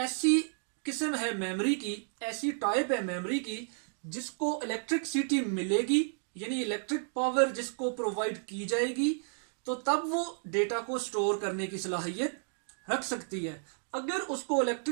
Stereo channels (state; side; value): silent; left; digital silence